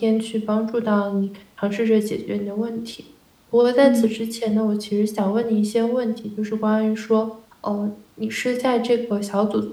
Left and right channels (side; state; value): both; identical; correlation 1.00